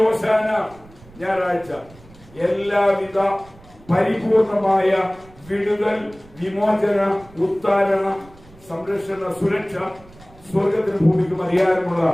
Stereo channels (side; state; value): right; noise; rumble, 24 dB below the sound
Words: ഹോശാന ഞായറാഴ്ച എല്ലാവിധ പരിപൂർണമായ വിടുതൽ, വിമോചന, ഉത്താരണ, സംരക്ഷണ, സുരക്ഷ സ്വർഗത്തിന് ഭൂമിക്കും അധികാരമുള്ള